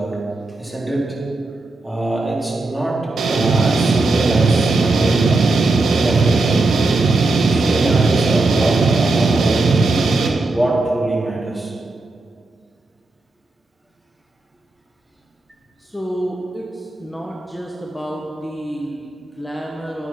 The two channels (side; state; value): left; quieter; 3.1 dB